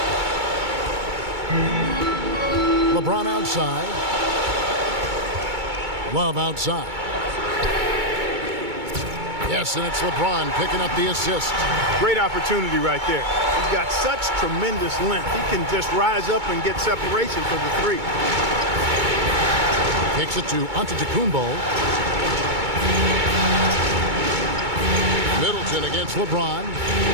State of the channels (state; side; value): late; left; 2.2 ms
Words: LeBron outside. Love outside. Yes, and it's LeBron picking up the assist. Great opportunity right there. He's got such tremendous length. He can just rise up and get separation for the 3. Kicks it to Antetokounmpo. Middleton against LeBron.